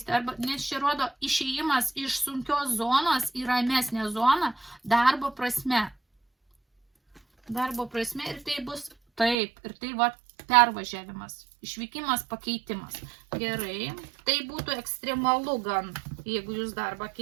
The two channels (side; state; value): left; drops out; at 9.3 s